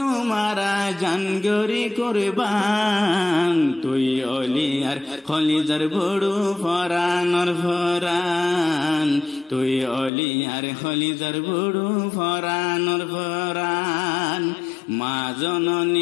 আরা জানগরি কুরবান তুই অলিয়ার খলিজার বড়ু ফরানর ফরান তুই অলিয়ার খলিজার বড়ু ফরানর ফরান মা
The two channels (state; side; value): drops out; right; at 10.1 s